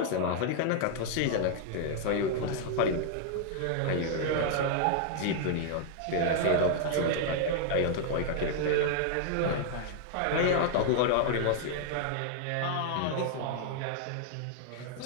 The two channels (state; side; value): different; both; correlation 0.00